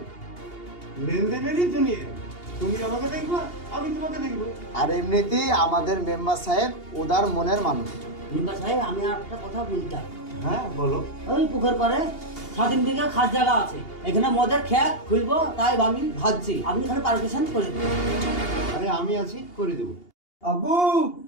লেনদেনেরই দুনিয়া। তুমি আমাকে দেখবা, আমি তোমাকে দেখবো। আর এমনিতেই আমাদের মেম্বার সাহেব উদার মনের মানুষ। মেম্বার সাহেব আমি আর একটা কথা বলতাম। হ্যাঁ বলো। ওই পুকুর পাড়ে 3 বিঘা খাস জায়গা আছে, এখানে মদের খেত খুলবো, তাই আমি ভাবছি আপনি এখানে পারমিশন করে দিন। আরে আমি আছি, করে দেবো। আব্বু,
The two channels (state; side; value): late; right; 2.8 ms